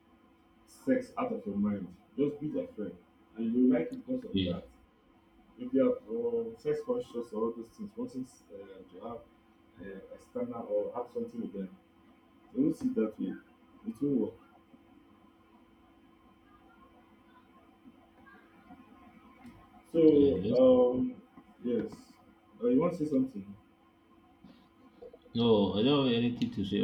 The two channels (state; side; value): identical; both; correlation 1.00